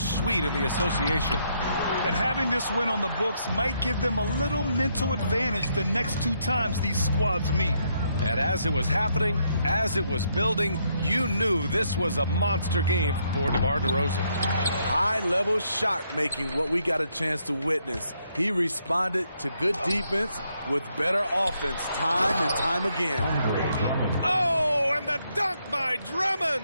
in the association. And having this win on the books might give them a little mental advantage the next 2 times these squads meet. And as it was happening, as it was building, you knew this was a monster game for DeMar DeRozan. High-level shot making, what we got a chance to witness. He responded to good defense with better offense time and time again. Oh, and the dunk by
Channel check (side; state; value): both; inverted; correlation -0.75